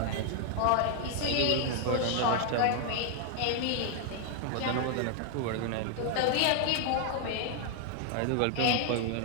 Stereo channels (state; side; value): different; both; correlation 0.00